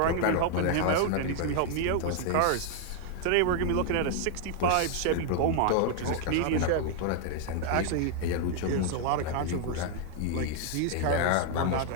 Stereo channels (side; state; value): both; different; correlation 0.00